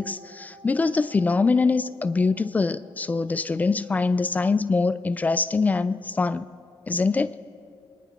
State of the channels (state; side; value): quieter; right; 3.6 dB